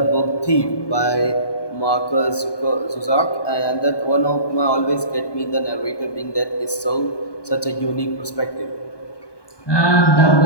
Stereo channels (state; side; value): late; right; 1.2 ms